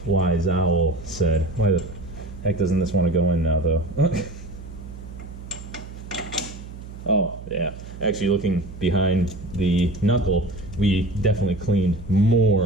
wise owl said. Why the heck doesn't this want to go in now, though? Oh, yeah. Actually, looking behind the knuckle, we definitely cleaned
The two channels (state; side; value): noise; right; hum, 13 dB below the sound